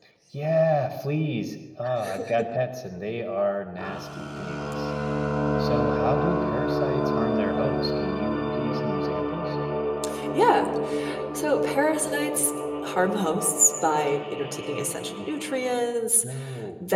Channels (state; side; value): identical; both; correlation 1.00